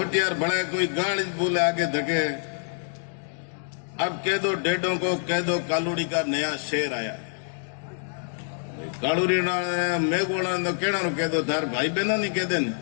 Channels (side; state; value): right; silent; digital silence